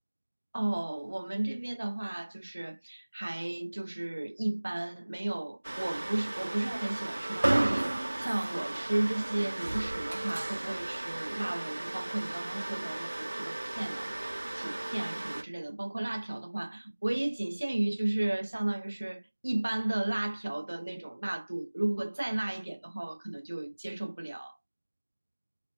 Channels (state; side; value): inverted; both; correlation -1.00